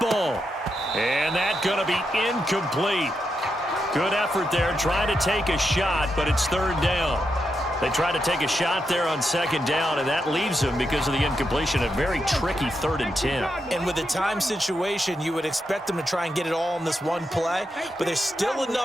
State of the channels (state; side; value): normal; both; correlation 0.84